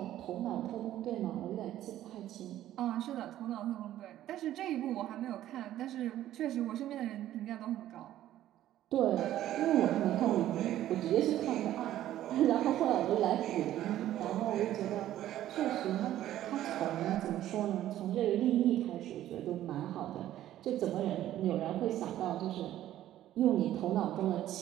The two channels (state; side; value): quieter; left; 13.0 dB